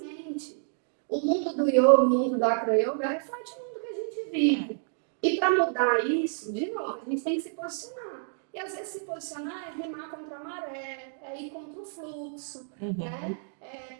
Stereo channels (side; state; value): left; silent; digital silence